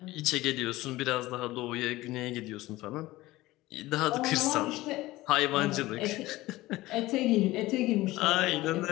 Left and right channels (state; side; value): quieter; right; 18.2 dB